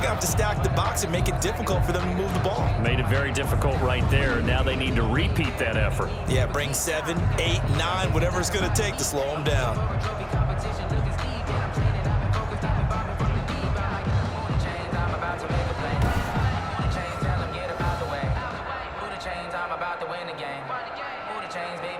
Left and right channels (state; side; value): identical; both; correlation 1.00